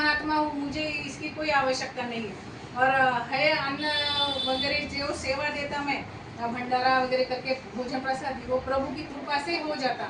हूँ, मुझे इसकी कोई आवश्यकता नहीं है, और है अन्न वगैरह जो सेवा देता मैं भंडारा वगैरह करके भोजन प्रसाद वो प्रभु की कृपा से हो जाता।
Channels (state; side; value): identical; both; correlation 1.00